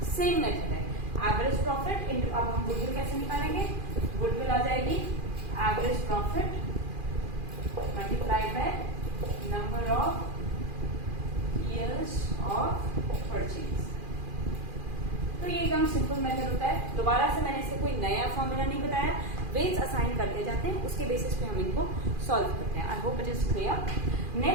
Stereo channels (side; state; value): left; late; 2.4 ms